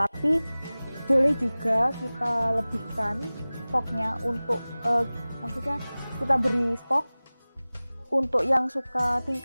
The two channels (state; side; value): inverted; both; correlation -0.99